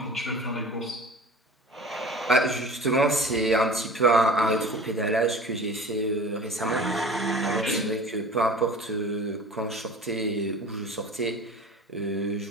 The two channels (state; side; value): normal; both; correlation 0.40